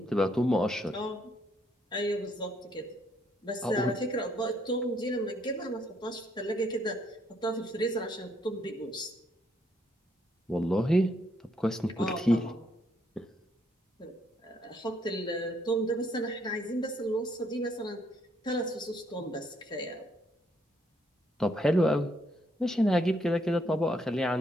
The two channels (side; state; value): both; normal; correlation 0.71